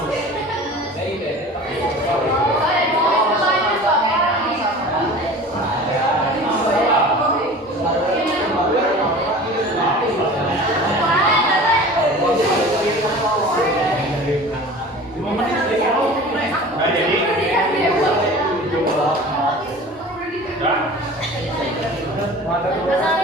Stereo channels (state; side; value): normal; both; correlation 0.40